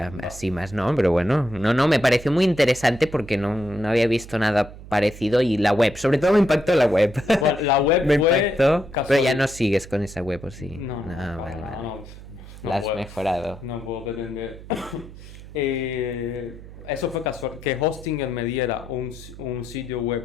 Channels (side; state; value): right; noise; hum, 16 dB below the sound